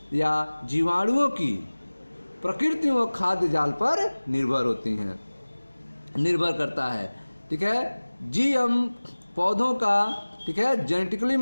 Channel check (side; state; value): both; inverted; correlation -1.00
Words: या जीवाणुओं की प्रकृति व खाद्य जाल पर निर्भर करता है। ठीक है, GM पौधों का, ठीक है, जेनेटिकली